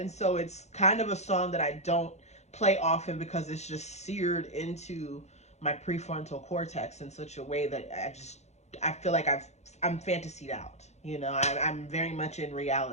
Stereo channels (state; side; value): late; right; 0.32 ms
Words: so it's kind of a song that I don't play often because it's just seared into my prefrontal cortex in such a way that I feel like I'm fantasied out. You know, I'm very much in